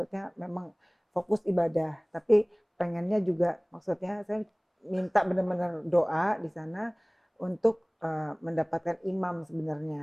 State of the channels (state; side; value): identical; both; correlation 1.00